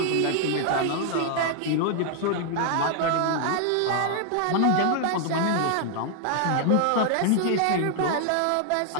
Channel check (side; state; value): both; different; correlation 0.00